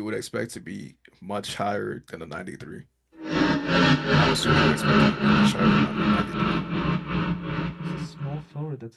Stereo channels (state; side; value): identical; both; correlation 1.00